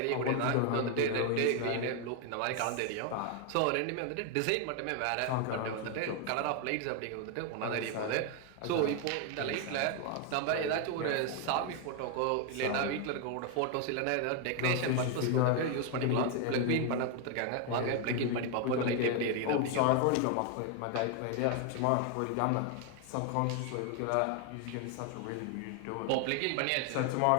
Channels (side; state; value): both; different; correlation 0.01